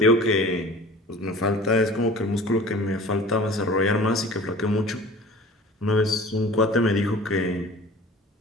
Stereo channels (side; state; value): both; normal; correlation 0.42